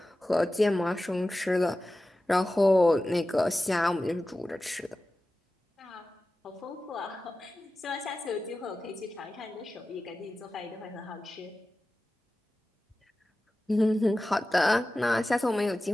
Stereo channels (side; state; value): both; normal; correlation 0.95